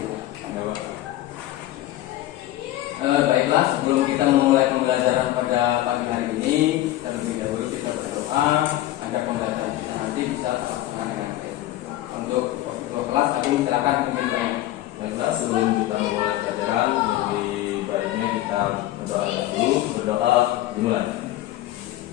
Ya Pak. Baiklah, sebelum kita memulai pembelajaran pada pagi hari ini, terlebih dahulu kita berdoa agar pembelajaran kita nanti bisa terlaksana dengan baik. Untuk kelas, aku silakan pimpin saya. Baiklah, sebelum kita memulai pelajaran, lebih baiknya kita berdoa dulu. Berdoa dimulai.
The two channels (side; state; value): right; quieter; 14.9 dB